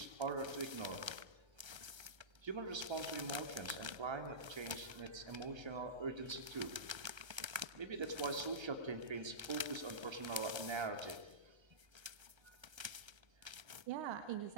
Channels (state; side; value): late; left; 1.3 ms